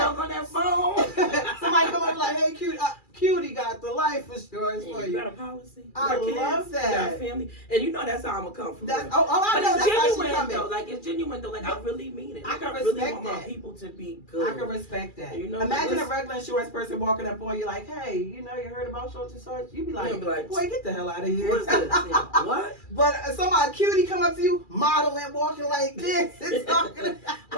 on that phone. Somebody come up like, hey, Cutie got the life insurance for you. You got a policy? I love that. You got a family? And you know that's how I'm going to come from. I know. That's genuine, how she coming. though. Like, it's genuine, though. Like, I really mean it. Like, I can really respect want that. my people to be good. I can respect that. You know, imagine a regular insurance person walking up on you like, hey, you know, you heard about such and such? You'd be like, boy, get the hell out of here. What's this? What? But somebody cutie come up to you, modeling, walking like this, and talking about,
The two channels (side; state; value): right; late; 2.4 ms